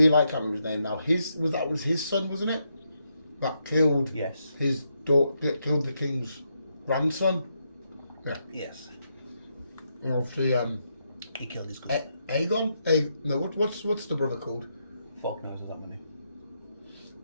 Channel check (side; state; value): both; inverted; correlation -0.81